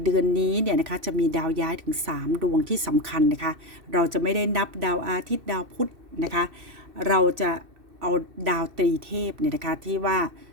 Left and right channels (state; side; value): late; left; 2.6 ms